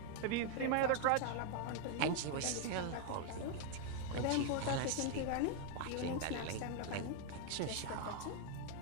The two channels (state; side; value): different; both; correlation 0.00